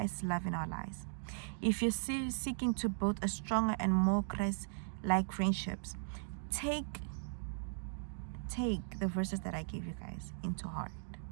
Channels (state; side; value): silent; left; digital silence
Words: love in our lives. If you're seeking to build a stronger and more Christ-like friendships, take the verses that I gave you guys into heart.